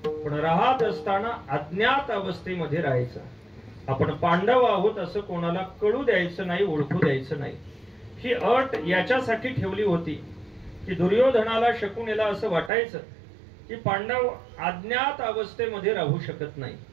पण राहत असताना अज्ञात अवस्थेमध्ये राहायचं. आपण पांडव आहोत असं कोणाला कळू द्यायचं नाही, ओळखू द्यायचं नाही. ही अट याच्यासाठी ठेवली होती की दुर्योधनाला शकुनीला असं वाटायचं की पांडव अज्ञात अवस्थेमध्ये राहू शकत नाही.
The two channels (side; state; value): left; drops out; at 12.7 s